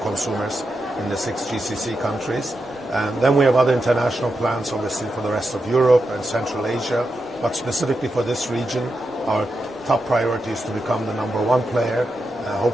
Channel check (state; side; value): normal; both; correlation 0.87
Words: in the 6 GCC countries. Then we have other international plans, obviously, for the rest of Europe and Central Asia. But specifically for this region, our top priority is to become the #1 player,